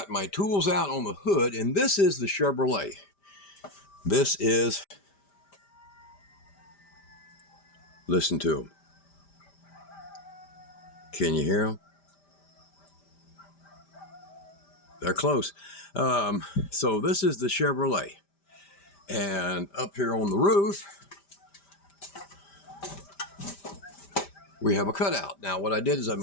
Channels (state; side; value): late; right; 5.1 ms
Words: my tools out on the hood, and this is the Chevrolet. Listen to them. Can you hear them? They're close. So this is the Chevrolet. And up here on the roof, we have a cutout. Now, what I did is I